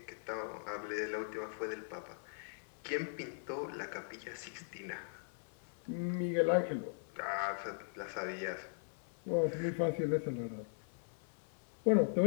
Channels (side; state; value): right; silent; 51 dB below the other